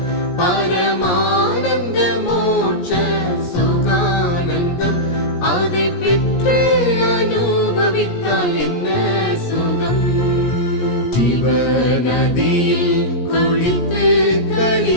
பரமானந்த மோட்ச சுகானந்தம், அதை பெற்று அனுபவித்தால் என்ன சுகம். ஜீவநதியில் குளித்து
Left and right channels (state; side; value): late; right; 17 ms